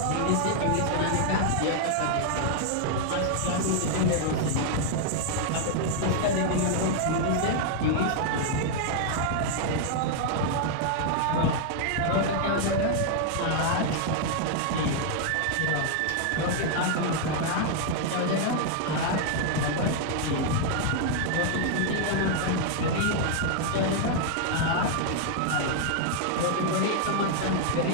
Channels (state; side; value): different; both; correlation 0.00